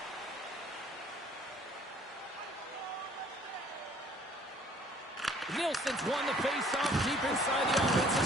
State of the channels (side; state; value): both; normal; correlation 0.57